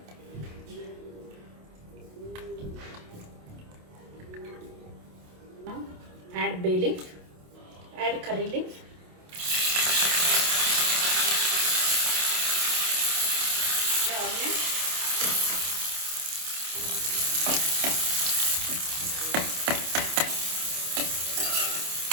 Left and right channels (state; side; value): late; left; 27 ms